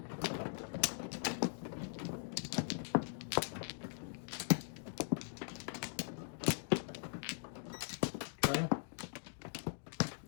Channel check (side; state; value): right; silent; digital silence